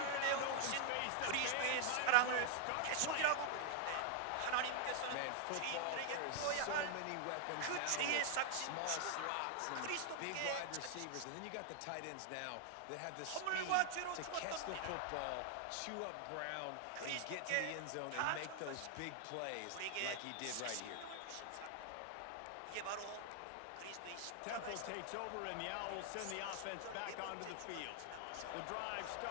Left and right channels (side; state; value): both; different; correlation 0.00